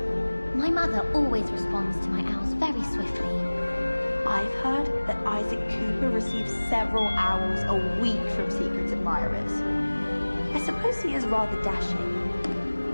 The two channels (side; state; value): both; inverted; correlation -1.00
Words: My mother always responds to my owls very swiftly. I've heard that Isaac Cooper receives several owls a week from secret admirers. I suppose he is rather dashing.